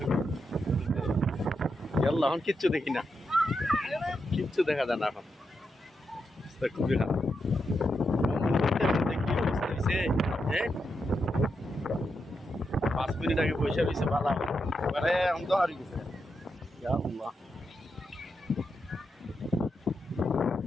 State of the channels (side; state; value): both; normal; correlation 0.85